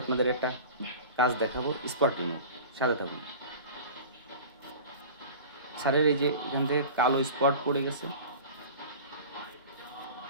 আপনাদের একটা কাজ দেখাবো, স্পটিং। সাথে থাকুন। স্যারের এই যে এখান থেকে কালো স্পট পড়ে গেছে,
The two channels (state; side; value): inverted; both; correlation -0.37